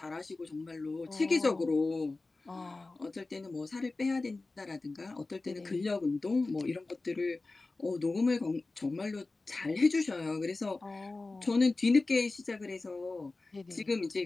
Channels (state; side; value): quieter; right; 3.4 dB